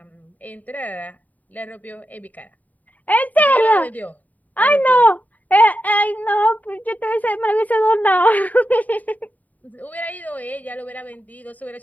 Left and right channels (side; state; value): right; late; 0.076 ms